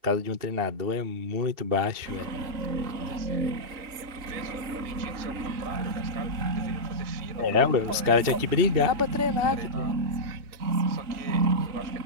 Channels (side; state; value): left; late; 2.8 ms